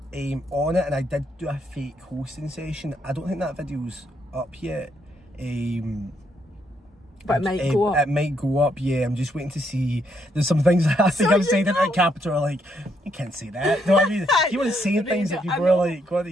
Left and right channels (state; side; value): normal; both; correlation 0.75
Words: on it, and I did do a fake hosting session. I don't think that video's up yet. But it might go up. It might go up, yeah. I'm just waiting to see. There's some things I think I've said at Capital are like, you can't say that. No, I mean, you want to say things that people are like, what are